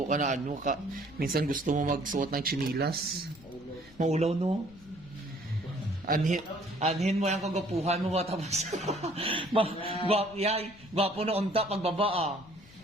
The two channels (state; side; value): noise; left; rumble, 23 dB below the sound